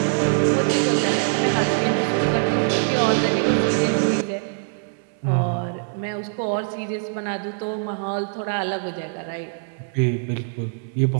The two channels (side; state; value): left; silent; 63 dB below the other